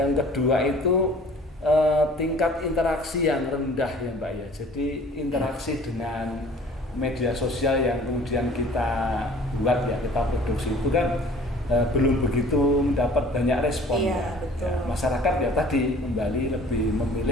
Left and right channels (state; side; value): normal; both; correlation 0.50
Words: kedua itu tingkat interaksi yang rendah ya Mbak ya. Jadi interaksi dengan media sosial yang kemudian kita buat ya, kita produksi itu kan belum begitu mendapat banyak respon ya. Masyarakat ya tadi kembali lebih